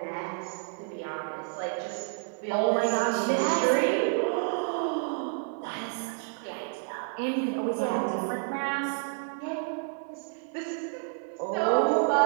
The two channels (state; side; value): silent; left; 58 dB below the other